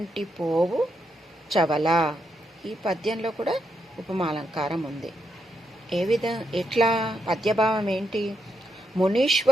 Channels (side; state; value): both; normal; correlation 0.81